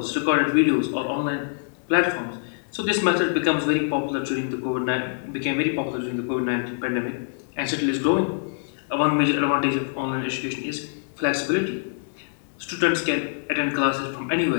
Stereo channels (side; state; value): right; silent; digital silence